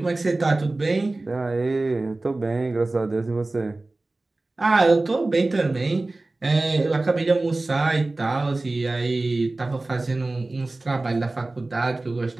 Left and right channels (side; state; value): left; quieter; 3.0 dB